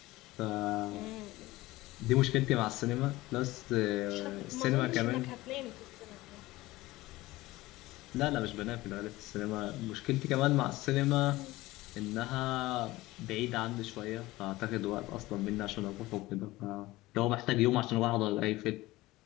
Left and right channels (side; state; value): right; quieter; 18.8 dB